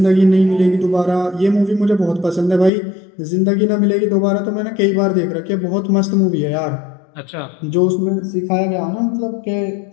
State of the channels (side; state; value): right; drops out; at 2.7 s